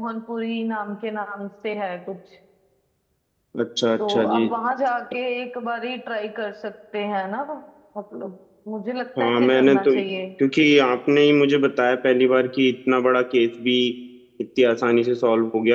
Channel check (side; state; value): both; identical; correlation 1.00